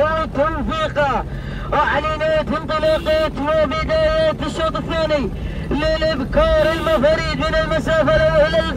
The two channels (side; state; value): both; identical; correlation 1.00